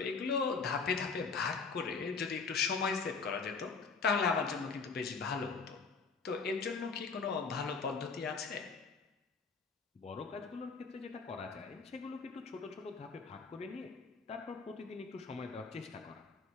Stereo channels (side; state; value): right; quieter; 4.9 dB